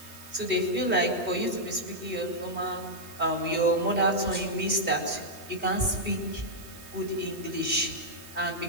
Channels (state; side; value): noise; right; hiss, 18 dB below the sound